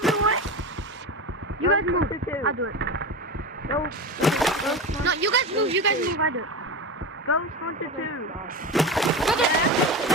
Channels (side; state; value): both; normal; correlation 0.24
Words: of the way. You guys move. I'll do it. No, you guys move. I do it. Ghost Hunter 2.